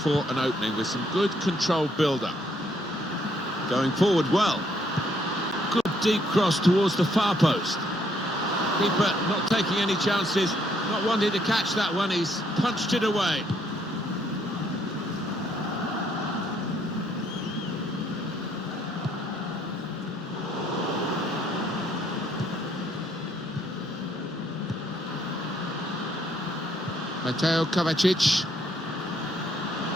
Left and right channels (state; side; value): normal; both; correlation 0.69